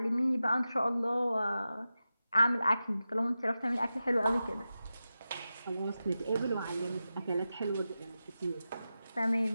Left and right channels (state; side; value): inverted; both; correlation -0.92